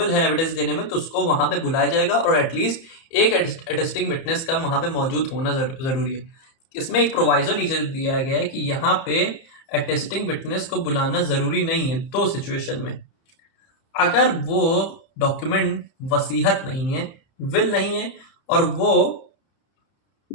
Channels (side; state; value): right; late; 30 ms